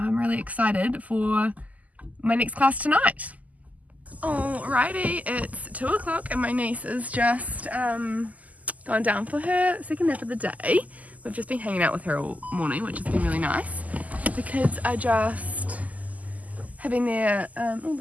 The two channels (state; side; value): late; left; 0.076 ms